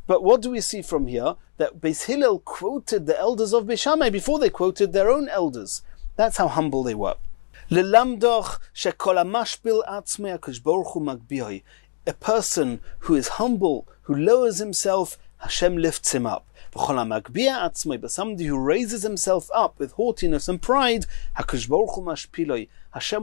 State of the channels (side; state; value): right; silent; digital silence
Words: But what do we see from here? That Beis Hillel quoted the elders of Beis Shammai before they quoted their own elders. That's how humble they were. A person who is humble, who lowers himself, Hashem lifts him up. But somebody who raises himself up with haughtiness and pride,